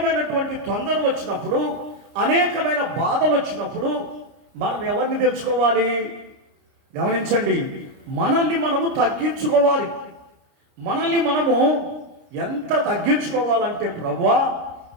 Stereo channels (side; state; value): left; late; 30 ms